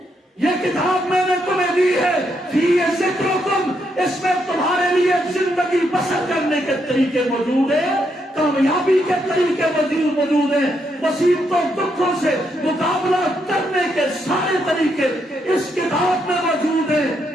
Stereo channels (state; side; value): normal; both; correlation 0.78